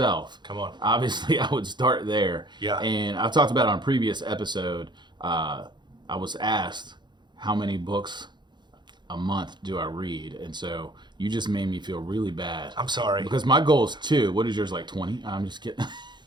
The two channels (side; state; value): left; late; 0.22 ms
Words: come on, obviously I would start there. Yeah. And I've talked about it on a previous episode. I was asked how many books a month do I read, and so you just made me feel really bad. I'm sorry. Because my goal is 2. What is yours, like 20? I'm just kidding.